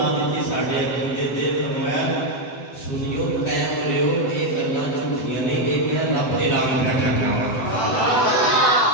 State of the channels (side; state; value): right; late; 7.9 ms